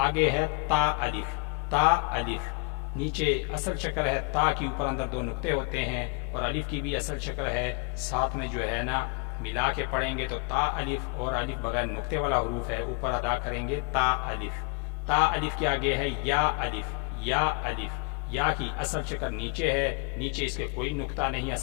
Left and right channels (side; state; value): right; quieter; 32.5 dB